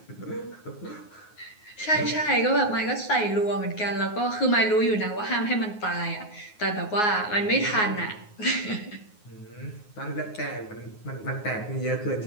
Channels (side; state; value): right; late; 9.5 ms